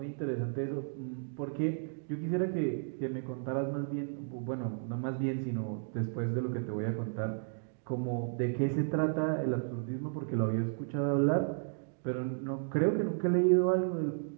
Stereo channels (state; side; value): silent; left; digital silence